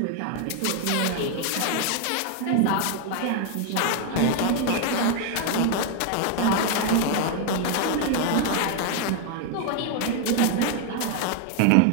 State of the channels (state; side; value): different; both; correlation 0.00